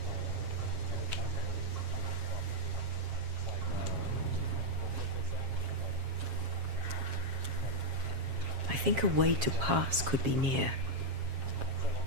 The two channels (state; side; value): late; left; 7.4 ms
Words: I think a way to pass could be near.